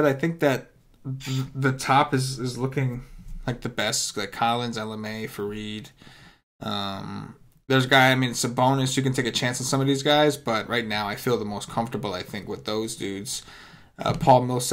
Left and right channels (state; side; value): identical; both; correlation 1.00